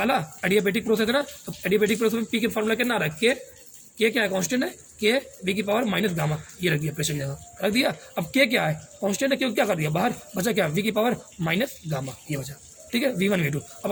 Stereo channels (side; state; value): both; identical; correlation 1.00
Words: एडियाबेटिक प्रोसेस है ना, तो एडियाबेटिक प्रोसेस में पी के फार्मूला कितना आ रहा है, के क्या है, कांस्टेंट है, के वी की पावर माइनस गामा, ये रख दिया प्रेशर की जगह, रख दिया। अब के क्या है, कांस्टेंट है, क्यों क्या कर दिया बाहर, बचा क्या, वी की पावर माइनस गामा, ये बचा, ठीक है, वी वन वी टू। अब